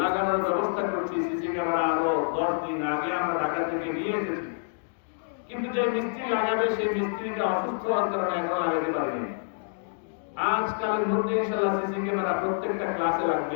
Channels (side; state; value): right; silent; digital silence